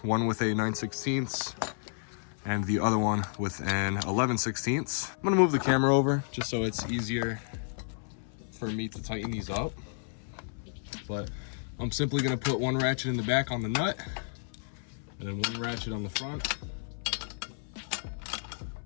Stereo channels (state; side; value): silent; right; 57 dB below the other